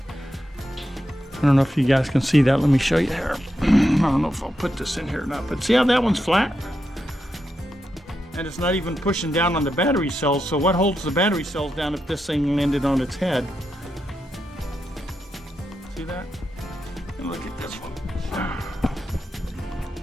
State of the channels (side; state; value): both; normal; correlation 0.86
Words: I don't know if you guys can see that. Let me show you here. I don't know if I'll put this in here or not, but see how that one's flat? And it's not even pushing down on the battery cells. So what holds the battery cells down if this thing landed on its head? See that? And look at this one.